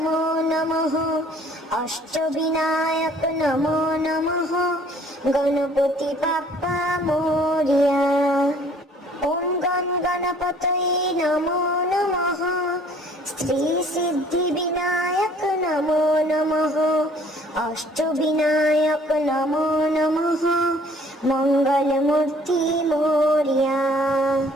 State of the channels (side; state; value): both; normal; correlation 0.57